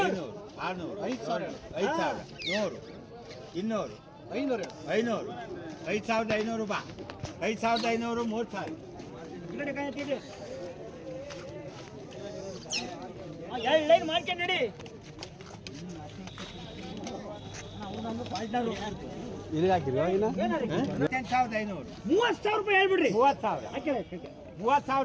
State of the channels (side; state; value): both; identical; correlation 1.00